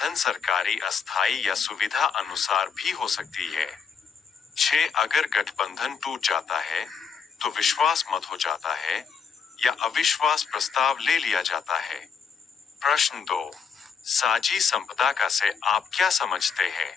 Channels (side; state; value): right; quieter; 6.3 dB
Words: सरकारी अस्थायी या सुविधा अनुसार भी हो सकती है। छह अगर गठबंधन टूट जाता है तो विश्वास मत हो जाता है या अविश्वास प्रस्ताव ले लिया जाता है। प्रश्न 2, साझी संपदा का से आप क्या समझते हैं?